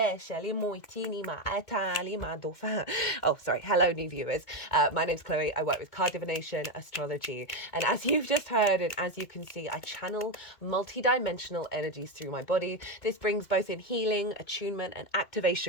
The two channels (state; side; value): late; right; 2.2 ms